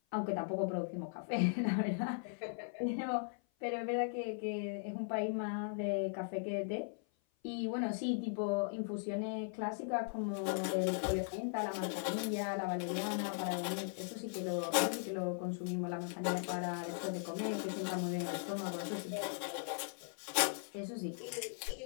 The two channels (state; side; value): silent; right; 52 dB below the other